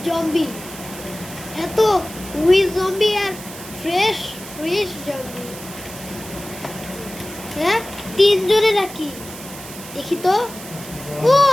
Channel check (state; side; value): noise; right; hiss, 14 dB below the sound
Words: জম্বি, এত উইথ জম্বি আর ফ্রেশ জম্বি। হ্যাঁ, তিনজনে নাকি দেখি তো। ও